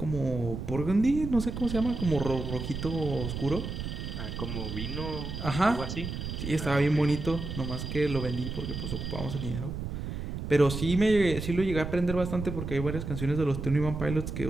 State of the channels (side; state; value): right; noise; rumble, 5 dB below the sound